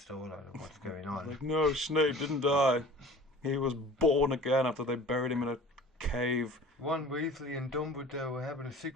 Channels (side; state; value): both; normal; correlation 0.43